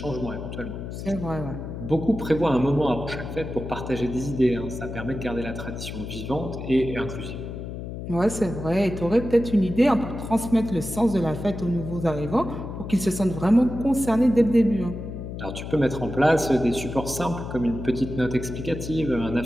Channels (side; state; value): left; noise; hum, 8 dB below the sound